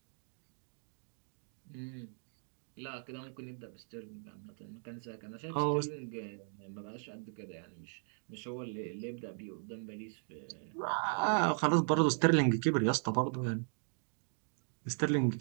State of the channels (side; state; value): left; silent; 53 dB below the other